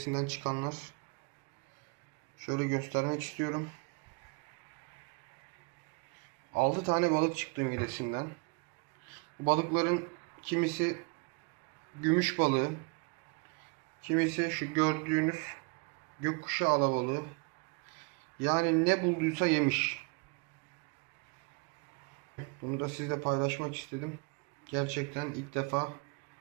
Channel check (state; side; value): quieter; left; 32.0 dB